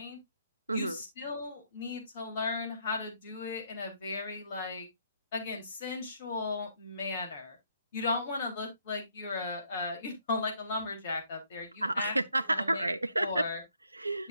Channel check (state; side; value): inverted; both; correlation -0.70